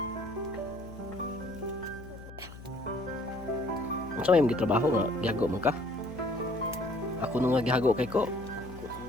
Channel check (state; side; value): noise; left; hum, 15 dB below the sound